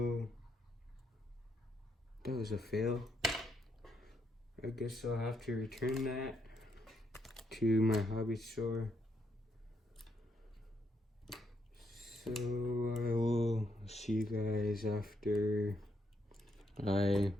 that was a fail. I guess I'll have to return that to my hobby store. So I will see you guys after I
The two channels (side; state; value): both; normal; correlation 0.77